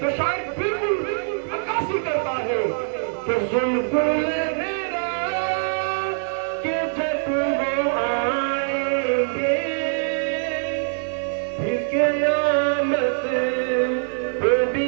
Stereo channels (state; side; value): silent; left; 63 dB below the other